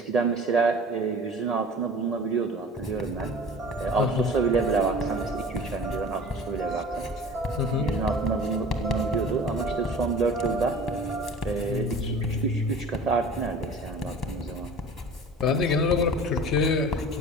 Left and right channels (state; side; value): normal; both; correlation 0.41